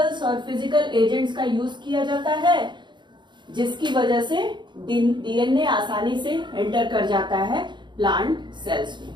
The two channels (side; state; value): left; late; 0.22 ms